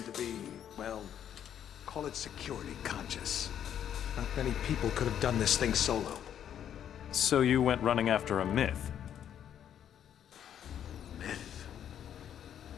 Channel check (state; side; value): quieter; right; 9.6 dB